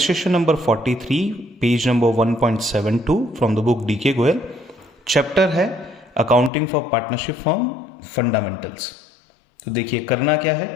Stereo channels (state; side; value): drops out; right; at 6.5 s